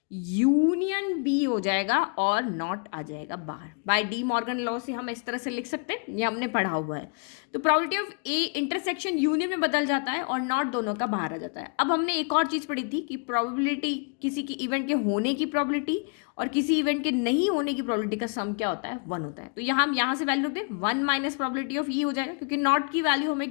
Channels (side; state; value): right; quieter; 37.9 dB